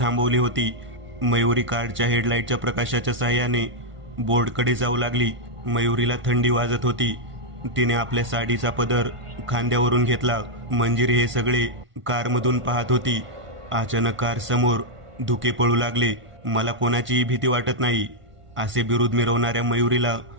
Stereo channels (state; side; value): late; left; 1.5 ms